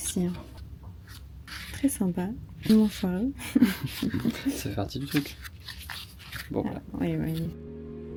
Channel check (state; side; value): identical; both; correlation 1.00